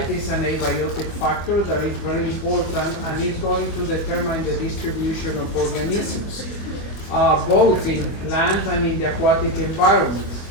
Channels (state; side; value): late; right; 24 ms